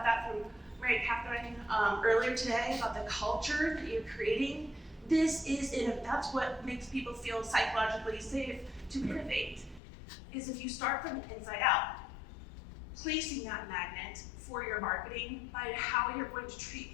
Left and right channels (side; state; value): right; drops out; at 9.8 s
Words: that from Mary Catherine earlier today, about the culture that you're creating. That's what makes people feel psychologically safe to innovate, is if you start from the inside out, placing that magnet for your marketing by how you're going to treat